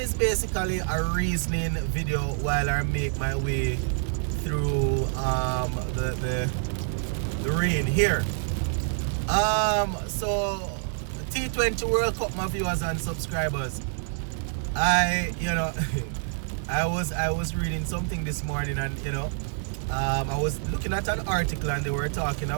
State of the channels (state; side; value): silent; left; digital silence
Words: basically a reasoning video while I make my way through the rain here. So T20 World Cup, my viewers and subscribers. I was reading something this morning, and I was looking at an article and they were talking